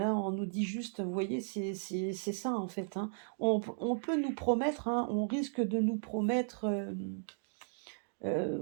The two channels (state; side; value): silent; left; digital silence